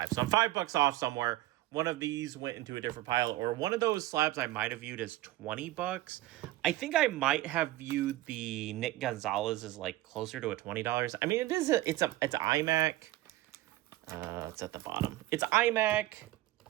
So I'm $5 off somewhere. one of these went into a different pile, or one of those slabs I might have viewed as $20. I think I might have viewed the Nick Gonzalez as like closer to a $20. I mean, it's iMac. It's at the bottom. It's iMac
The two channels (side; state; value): left; quieter; 16.3 dB